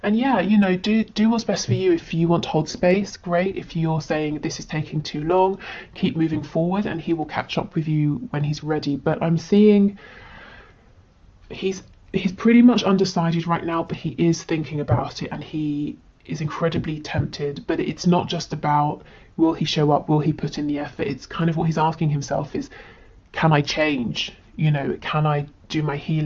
And yeah, you know, do what's best for you. If you want to hold space, great. If you're saying this is taking too long, keep moving forward, and he will catch up with you when he's ready. But I'm seeing he's pretty much undecided right now, but he is thinking about it, and he is incredibly tempted. But it's not just about will he show up, will he put in the effort. It's kind of what he's asking himself is, can I change? You know, can I do my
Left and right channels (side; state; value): both; identical; correlation 1.00